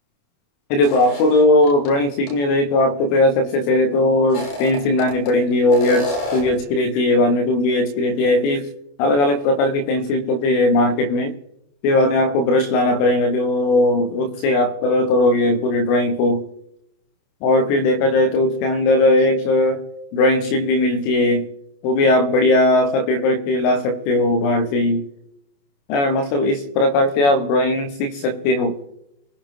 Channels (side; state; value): right; late; 28 ms